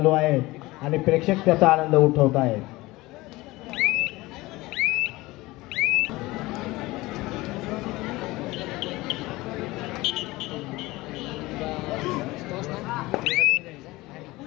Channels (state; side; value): quieter; right; 20.2 dB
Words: आहेत आणि प्रेक्षक त्याचा आनंद उठवत आहेत.